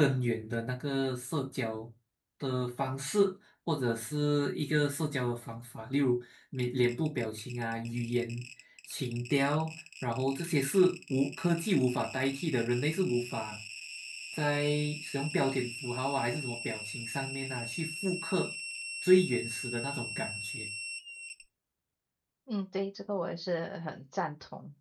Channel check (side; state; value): both; identical; correlation 1.00